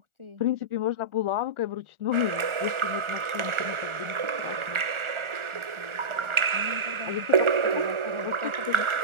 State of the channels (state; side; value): late; left; 1.4 ms